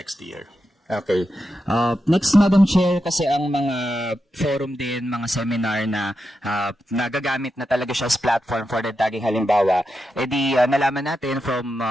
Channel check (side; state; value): both; normal; correlation 0.88